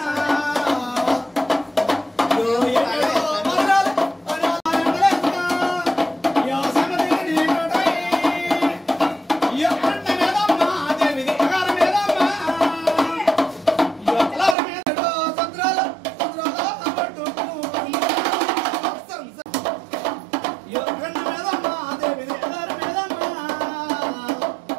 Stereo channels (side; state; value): left; drops out; at 14.6 s